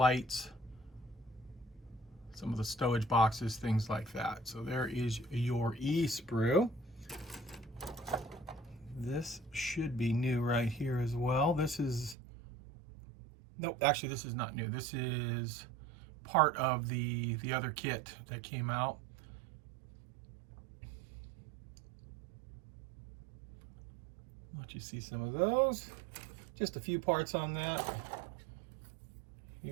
some of the stowage boxes, things like that. So there is your E sprue. This should be new right here as well. This is, nope, actually this is not new. This is part of the other kit that came out. Let you see some of those. Just a few parts on that.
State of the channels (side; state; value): left; drops out; at 12.2 s